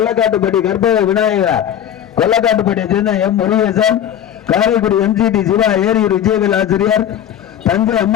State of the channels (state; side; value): quieter; right; 10.1 dB